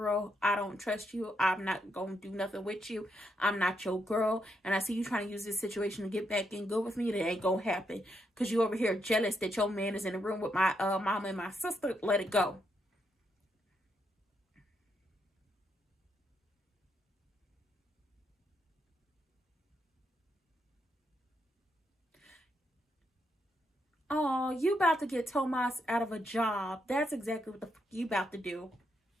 I don't trust you. I'm not going to do nothing with you. I'm not your girl. And I see you trying to use this situation to get back in good with me. That ain't going to happen. Because you over here jealous that your man is in the room with my mama and my sister. Let it go. Oh, you about to get Tomas out of a job. That's exactly what the fuck you about to do.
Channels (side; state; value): both; normal; correlation 0.80